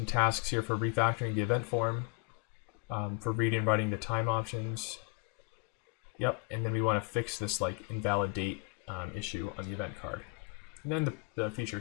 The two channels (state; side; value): quieter; right; 30.6 dB